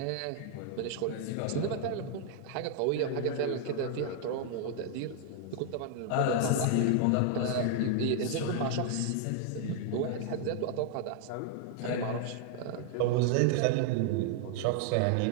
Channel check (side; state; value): both; different; correlation 0.00